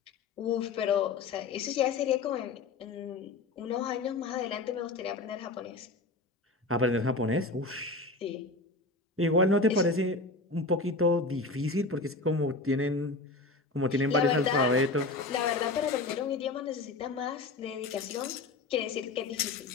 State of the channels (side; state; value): right; quieter; 3.4 dB